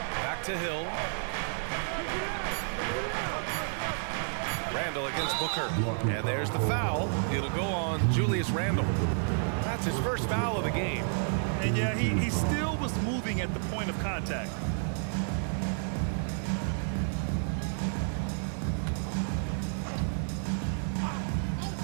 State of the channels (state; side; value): silent; left; 57 dB below the other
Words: Back to Hill. Randall against Booker. And there's the foul. It'll go on Julius Randall. That's his first foul of the game. And yeah, he still was moving at the point of contact.